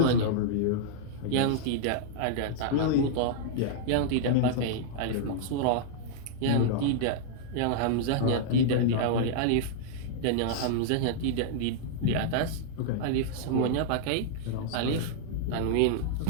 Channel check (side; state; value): both; different; correlation -0.01